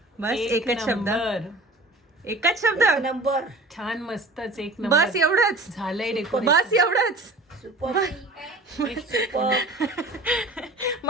बस एकच शब्द. एकच शब्द. नंबर. छान, मस्तच, एक नंबर. बस एवढंच. झालंय डेकोरेशन. बस एवढंच. सुपर. सुपर.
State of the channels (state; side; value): normal; both; correlation 0.41